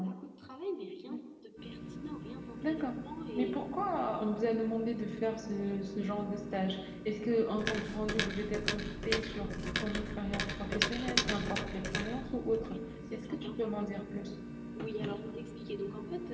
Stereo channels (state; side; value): identical; both; correlation 1.00